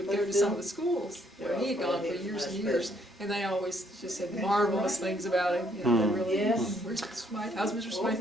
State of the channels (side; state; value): both; normal; correlation 0.68